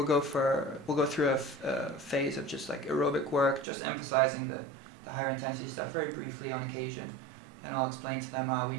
go through a phase of just like aerobic work, just emphasizing the higher intensity stuff very briefly on occasion, and I'll explain to them, we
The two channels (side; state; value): left; drops out; at 3.7 s